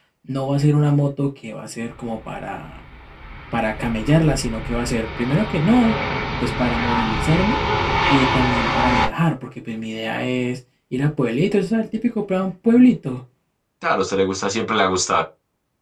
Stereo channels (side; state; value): both; identical; correlation 1.00